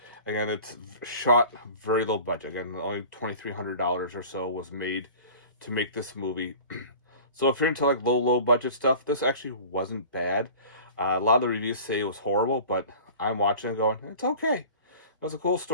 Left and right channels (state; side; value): inverted; both; correlation -0.42